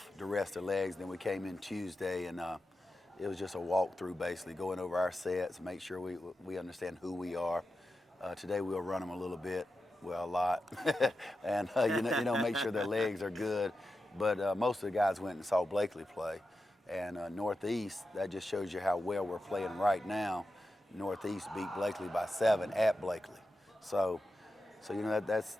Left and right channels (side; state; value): both; normal; correlation 0.90